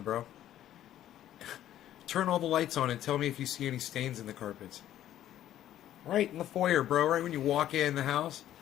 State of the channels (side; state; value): right; quieter; 12.2 dB